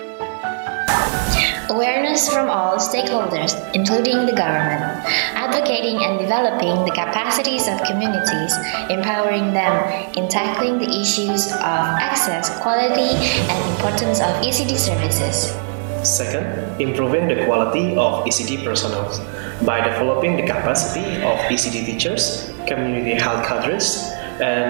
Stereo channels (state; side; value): silent; left; digital silence